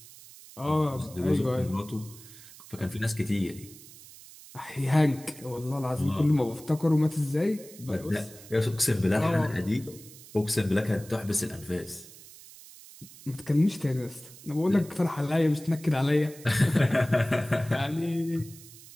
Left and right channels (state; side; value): noise; right; hiss, 19 dB below the sound